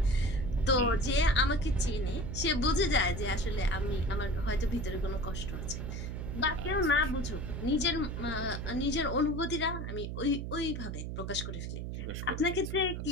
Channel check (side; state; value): right; noise; hum, 5 dB below the sound